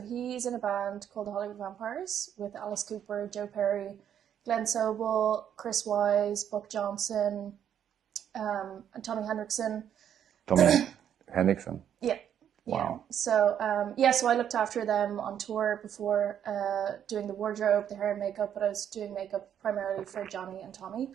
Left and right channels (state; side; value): quieter; left; 9.4 dB